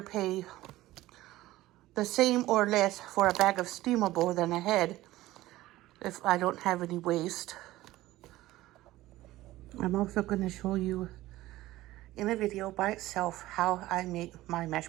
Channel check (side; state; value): left; quieter; 16.6 dB